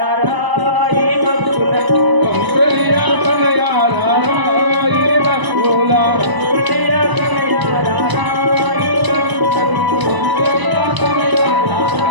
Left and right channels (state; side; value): late; left; 1.0 ms